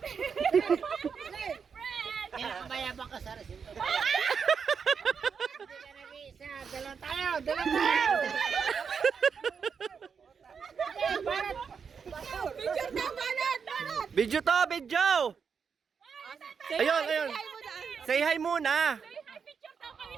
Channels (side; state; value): left; quieter; 6.2 dB